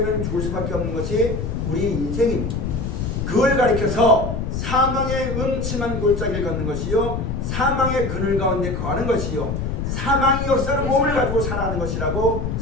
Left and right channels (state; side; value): noise; left; rumble, 3 dB below the sound